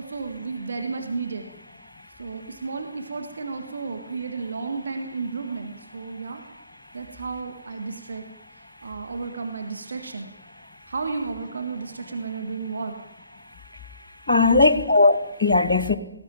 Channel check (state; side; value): inverted; both; correlation -0.64